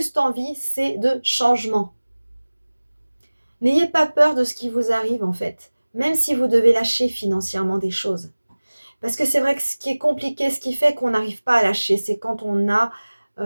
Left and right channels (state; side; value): inverted; both; correlation -1.00